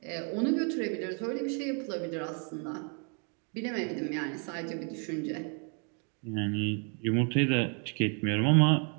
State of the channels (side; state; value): left; quieter; 38.8 dB